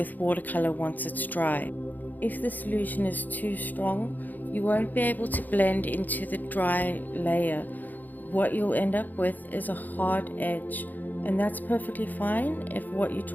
watercolor once it's dry. If the solution is too strong, you won't be able to blend into the dry layer. What you'll end up with is a hard edge, and that's perfectly fine if what you're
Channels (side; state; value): right; late; 0.084 ms